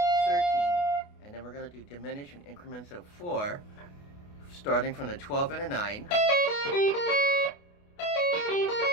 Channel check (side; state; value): right; late; 28 ms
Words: and then we're going to do diminish in increments of 4, starting from the 12 and a 9,